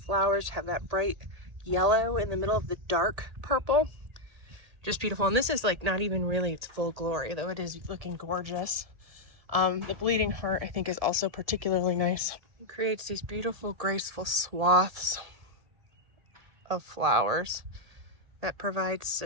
have that bright yellow in the middle of the dark purple. Just beautiful. And this is like not even really its full glory, though it is looking gorgeous. The bleeding heart I think is also particularly nice. It creates these beautiful graceful swaths of flowers that provides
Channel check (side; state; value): left; late; 1.8 ms